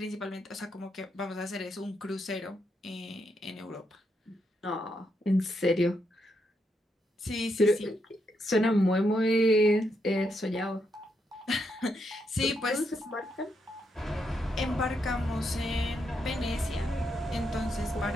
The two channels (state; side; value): normal; both; correlation 0.80